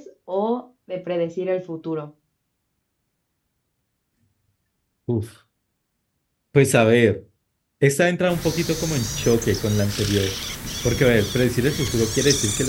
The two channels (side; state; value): both; identical; correlation 1.00